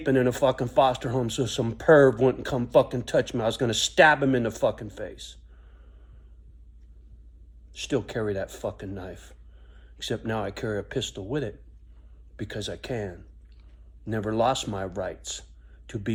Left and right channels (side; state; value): both; identical; correlation 1.00